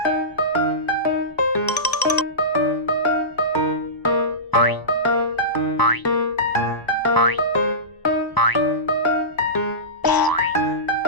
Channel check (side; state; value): right; late; 1.0 ms